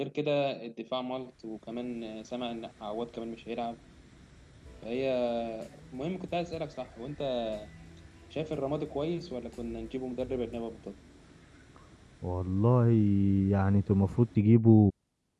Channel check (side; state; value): both; identical; correlation 1.00